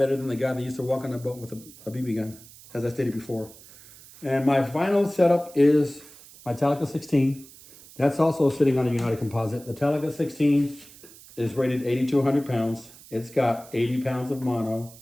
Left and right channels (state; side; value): noise; right; hiss, 21 dB below the sound